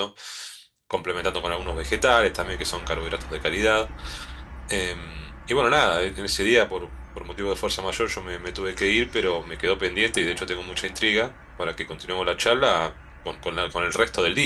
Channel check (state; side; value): identical; both; correlation 1.00